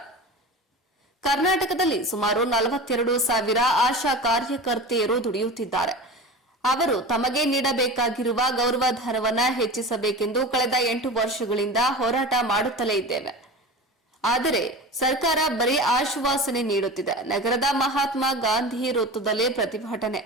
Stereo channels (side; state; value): both; normal; correlation 0.31